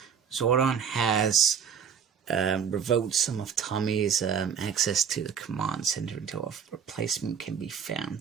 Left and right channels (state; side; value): quieter; left; 7.3 dB